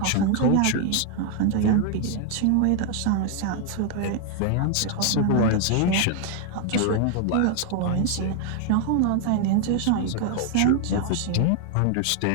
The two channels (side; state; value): both; different; correlation 0.00